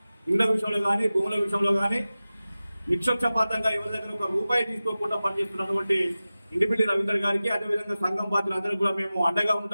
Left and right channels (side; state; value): both; inverted; correlation -0.96